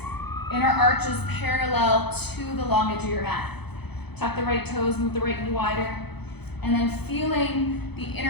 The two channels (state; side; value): late; right; 0.98 ms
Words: Inner arch is parallel to the long edge of your mat. Tuck the right toes, move the right knee wider. And then feeling the